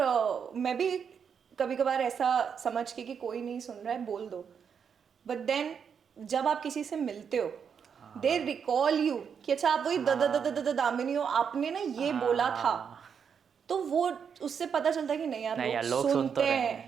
मैं भी कभी कभार ऐसा समझ के कि कोई नहीं सुन रहा है बोल दो, बट देन जब आप किसी से मिलते हो दे रिकॉल यू कि अच्छा आप वही दामिनी हो, आपने ना ये बोला था, तो वो उससे पता चलता है कि नहीं यार लोग सुनते हैं.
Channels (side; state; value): left; quieter; 7.0 dB